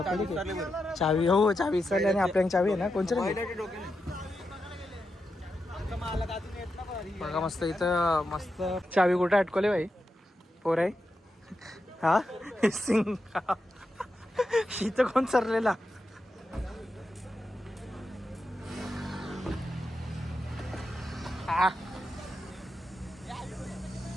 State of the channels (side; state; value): both; normal; correlation 0.87